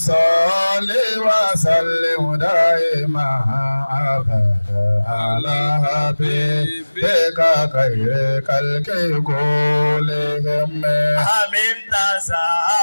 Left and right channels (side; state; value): both; inverted; correlation -1.00